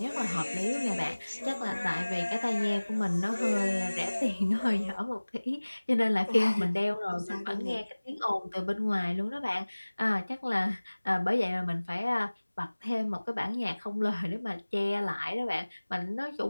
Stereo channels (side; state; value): both; inverted; correlation -1.00